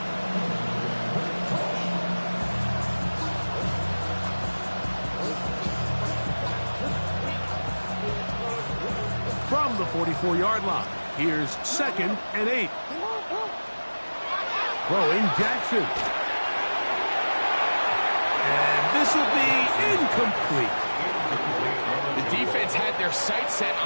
From the 44-yard line, here's 2nd and 8. Throwing Jackson. And this will be incomplete. The defense had their sights set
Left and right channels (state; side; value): inverted; both; correlation -1.00